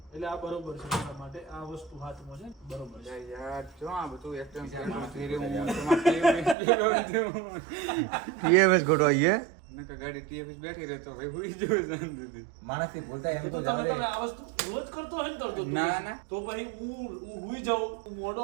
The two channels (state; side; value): drops out; left; at 6.6 s